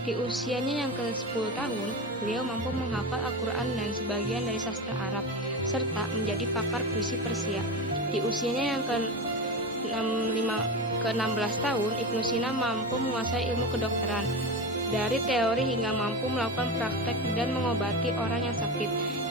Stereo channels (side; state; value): both; normal; correlation 0.23